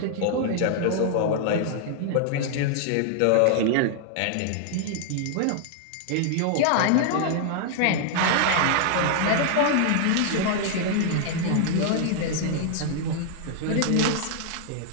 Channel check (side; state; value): both; different; correlation 0.00